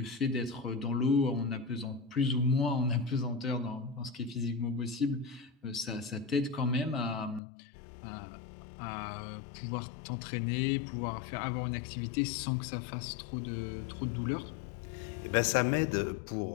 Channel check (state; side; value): drops out; right; at 7.4 s